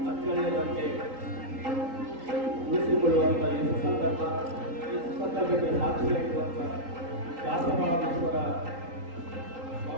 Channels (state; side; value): late; left; 3.8 ms